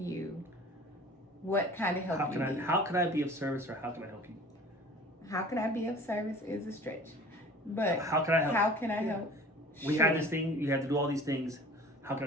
what kind of help you need. How can I be of service, or how can I help you? How can I be of service is a stretch. But how can I help? How can I help? We had this thing, you had to do all these things. How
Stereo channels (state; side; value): normal; both; correlation 0.44